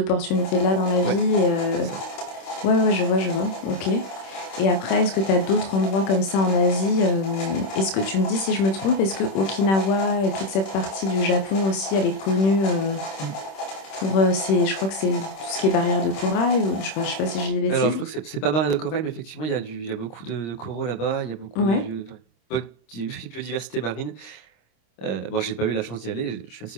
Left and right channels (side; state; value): right; late; 26 ms